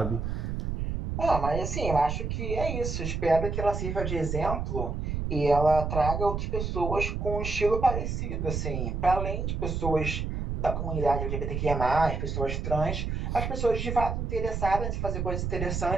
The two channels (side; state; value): right; noise; rumble, 2 dB below the sound